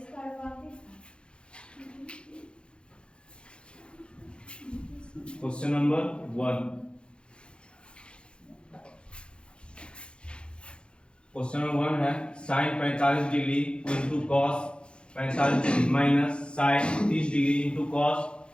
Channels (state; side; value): late; right; 0.055 ms